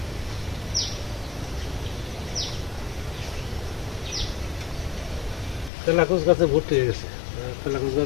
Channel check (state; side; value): drops out; right; at 5.7 s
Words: তেলাকুচ গাছে ভর্তি হয়ে গেছে, তেলাকুচ